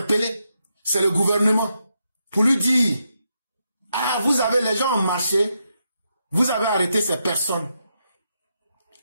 c'est le gouvernement. Pour lui dire, ah, vous avez, les gens ont marché, vous avez arrêté ces personnes.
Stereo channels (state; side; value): inverted; both; correlation -0.83